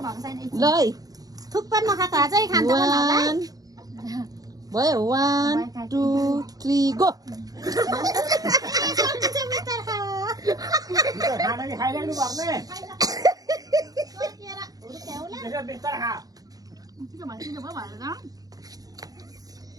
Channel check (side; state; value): left; late; 0.18 ms